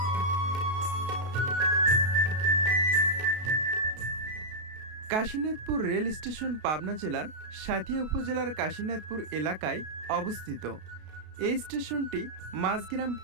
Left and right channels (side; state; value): left; late; 33 ms